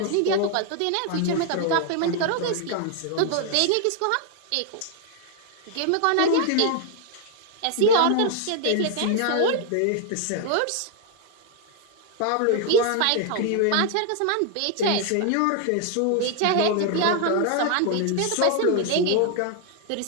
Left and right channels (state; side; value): different; both; correlation 0.00